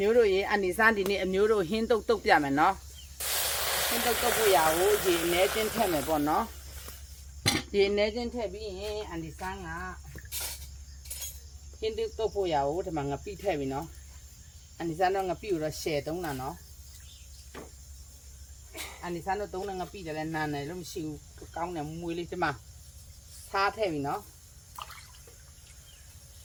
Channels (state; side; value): identical; both; correlation 1.00